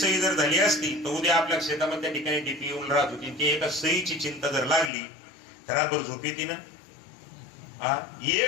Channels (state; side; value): drops out; right; at 4.9 s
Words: जर झाली असती तर उद्या आपल्या शेतामध्ये त्या ठिकाणी डीपी येऊन राहत होती. ती एका सहीची चिंता जर लागली तर रातभर झोप येते ना?